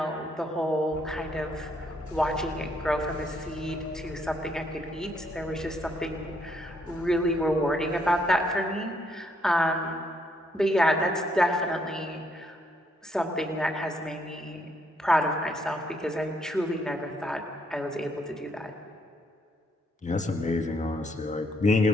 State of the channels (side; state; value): both; normal; correlation 0.72